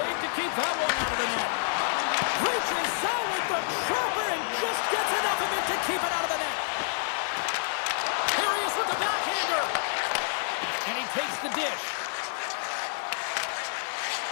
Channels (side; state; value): right; silent; digital silence